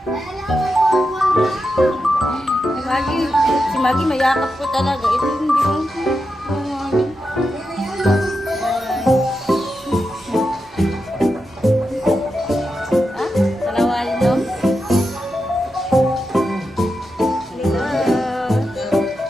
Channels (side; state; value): both; normal; correlation 0.88